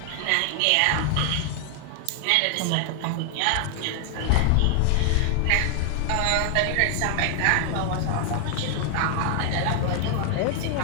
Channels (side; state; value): both; different; correlation 0.00